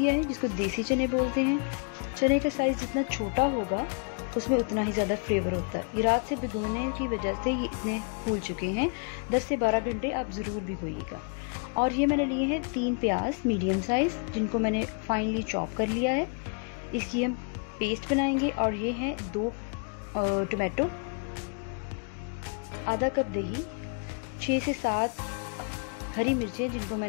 है, जिसको देसी चने बोलते हैं। चने का साइज़ जितना छोटा होगा उसमें उतना ही ज़्यादा फ्लेवर होता है। ये रात से भिगोने की वजह से ये इतने फूल चुके हैं। 10 से 12 घंटे आप ज़रूर भिगोइएगा। और ये मैंने लिए हैं 3 प्याज मीडियम साइज़, जिनको मैंने फाइनली चॉप कर लिया है। इसकी हम पेस्ट बनाएंगे। और ये हैं 2 टमाटो, आधा कप दही, 6 से 7 हरी मिर्चें जिनको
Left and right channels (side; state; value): right; quieter; 37.4 dB